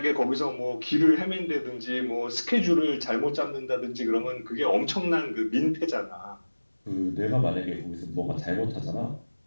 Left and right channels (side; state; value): both; inverted; correlation -1.00